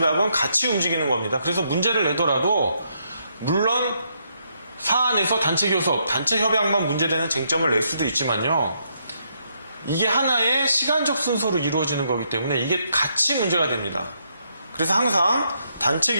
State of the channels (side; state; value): both; inverted; correlation -0.76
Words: 같이 움직이는 겁니다. 그래서 문제를 내더라도 물론 사안에서 단체 교섭, 단체 협약만 문제되는 쟁점을 낼 수도 있지만요. 이게 하나의 시간적 순서로 이루어지는 거기 때문에 이게 같이 문제가 됩니다. 그래서 항상 단체